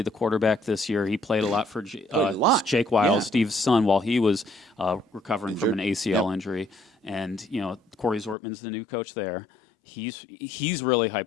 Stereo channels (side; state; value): right; drops out; at 8.3 s